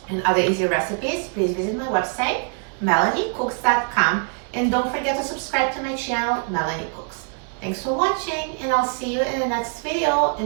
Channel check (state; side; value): quieter; left; 39.3 dB